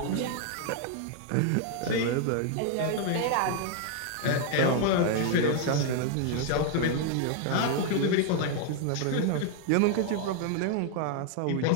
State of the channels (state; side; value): different; both; correlation 0.00